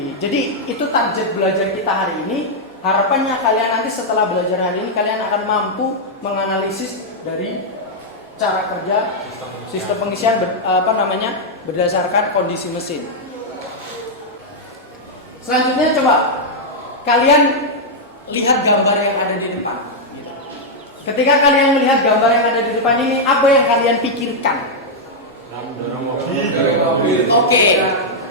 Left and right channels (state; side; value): normal; both; correlation -0.04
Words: Jadi itu target belajar kita hari ini. Harapannya kalian nanti setelah belajar hari ini kalian akan mampu menganalisis dari cara kerja sistem pengisian berdasarkan kondisi mesin. Selanjutnya coba kalian lihat gambar yang ada di depan. Ketika kalian melihat gambar yang ada di depan ini, apa yang kalian pikirkan? Oke.